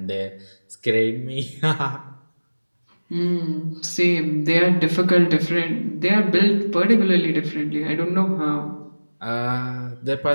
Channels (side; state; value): both; inverted; correlation -1.00